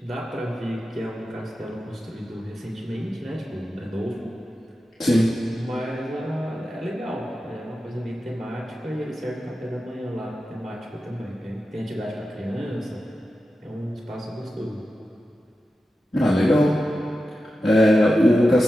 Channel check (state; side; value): normal; both; correlation 0.92